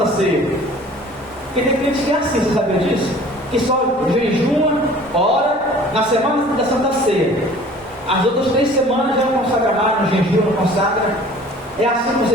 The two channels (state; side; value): normal; both; correlation 0.48